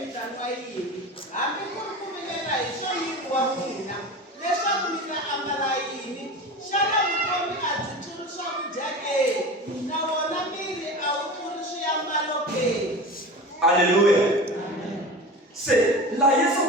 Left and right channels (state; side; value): normal; both; correlation 0.32